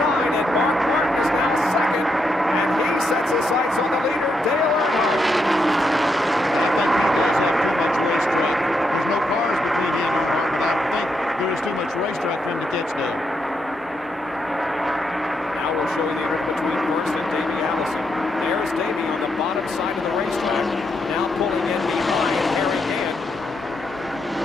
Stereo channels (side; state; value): both; normal; correlation 0.81